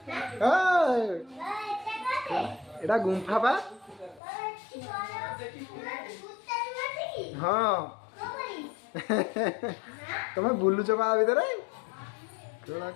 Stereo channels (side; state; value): right; drops out; at 4.2 s